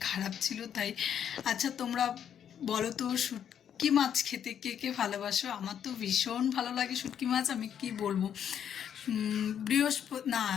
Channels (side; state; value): right; quieter; 8.9 dB